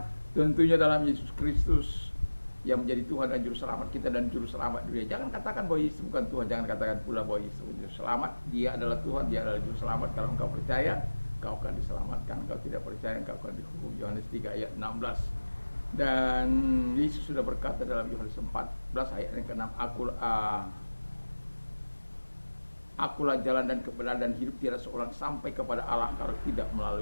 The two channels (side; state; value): both; inverted; correlation -1.00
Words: tentunya dalam Yesus Kristus yang menjadi Tuhan dan Juru Selamat kita dan Juru Selamat dunia. Jangan katakan bahwa Yesus bukan Tuhan, jangan katakan pula bahwa Yesus Juru Selamat. Dia adalah Tuhan, dia adalah Juru Selamat. Kalau engkau percaya, engkau akan diselamatkan. Engkau tidak percaya, engkau akan dihukum. Yohanes 3 ayat 16. Dan Yesus sudah berkata dalam Yohanes 14 ayat yang ke-6, Akulah jalan dan kebenaran dan hidup, tidak seorang sampai kepada Allah kalau tidak